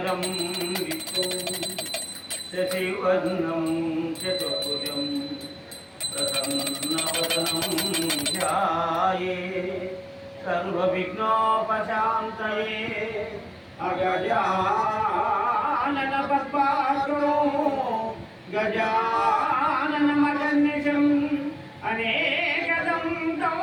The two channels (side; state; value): both; identical; correlation 1.00